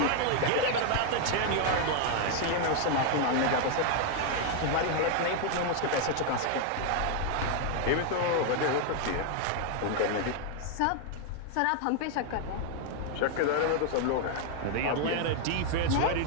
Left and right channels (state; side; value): different; both; correlation 0.00